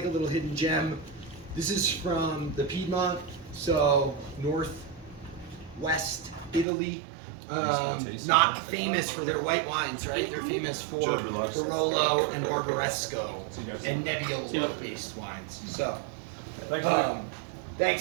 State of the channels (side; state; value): left; drops out; at 6.7 s